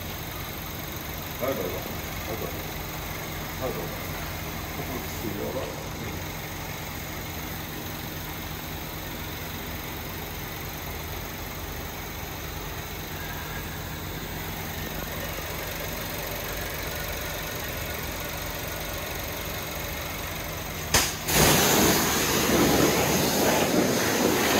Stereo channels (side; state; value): both; identical; correlation 1.00